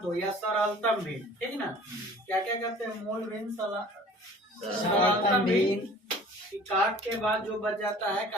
दो या सरलतम भिन्न, ठीक ना। क्या क्या कहते हैं? मूल भिन्न, सरलतम भिन्न। काट के बाद जो बच जाता है,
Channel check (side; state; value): both; normal; correlation 0.47